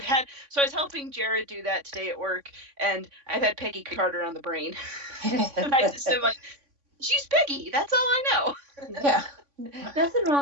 was helping Jared do that today at work, and I've had Peggy Carter on the brain. And I just am like, she's Peggy. That's all I know. Yeah. Nothing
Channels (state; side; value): late; left; 3.5 ms